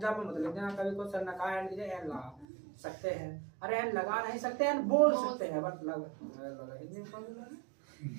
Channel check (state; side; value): drops out; left; at 2.5 s